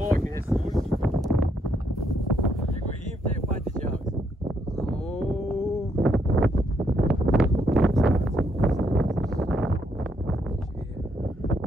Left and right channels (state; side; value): normal; both; correlation 0.74